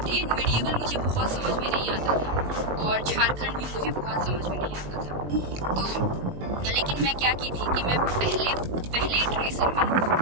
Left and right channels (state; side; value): late; left; 20 ms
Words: ए मीडिएवल मुझे बहुत समझ में नहीं आता था, और झारखंड भी मुझे बहुत समझ में नहीं आता था। तो लेकिन मैं क्या की थी कि मैं पहले इटरेशन में